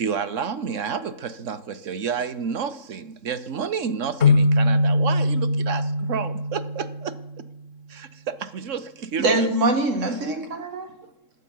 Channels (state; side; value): late; left; 3.7 ms